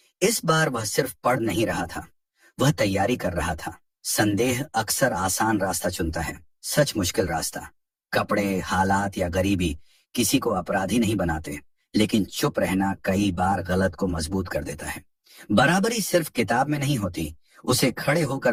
इस बार वह सिर्फ पढ़ नहीं रहा था, वह तैयारी कर रहा था। संदेह अक्सर आसान रास्ता चुनता है, सच मुश्किल रास्ता। कपड़े, हालात या गरीबी किसी को अपराधी नहीं बनाते, लेकिन चुप रहना कई बार गलत को मजबूत कर देता है। बराबरी सिर्फ किताब में नहीं होती, उसे खड़े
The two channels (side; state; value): both; identical; correlation 1.00